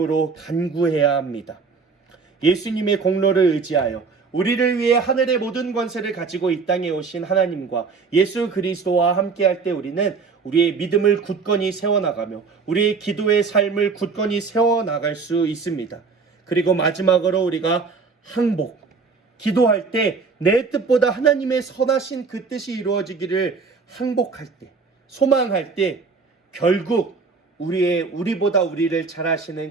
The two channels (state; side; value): quieter; left; 4.8 dB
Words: 간구해야 합니다. 예수님의 공로를 의지하여 우리를 위해 하늘의 모든 권세를 가지고 이 땅에 오신 하나님과 예수 그리스도와 함께할 때 우리는 우리의 믿음을 굳건히 세워나가며 우리의 기도의 삶을 굳건히 세워나갈 수 있습니다. 그리고 마지막으로 우리가 항복, 기도할 때 내 뜻보다 하나님의 선하신 그 뜻이 이루어지기를 항복할 때, 소망할 때 결국 우리보다 우리를 잘